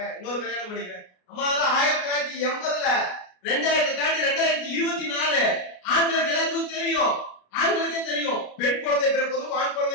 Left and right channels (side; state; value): right; late; 33 ms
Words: இன்னொரு கல்யாணம் பண்ணிக்கிறேன். அம்மா அதெல்லாம் 1980ல 2000 தாண்டி 2024 ஆண்களுக்கு எல்லாத்துக்கும் தெரியும். ஆண்களுக்கே தெரியும் பெண் குழந்தை பிறப்பதும் ஆண்